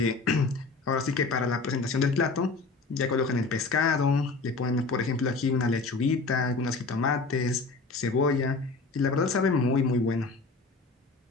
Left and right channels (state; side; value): quieter; right; 3.8 dB